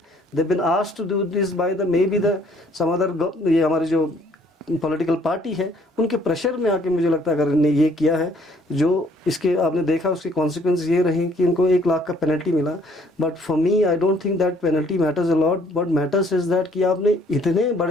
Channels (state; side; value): normal; both; correlation 0.61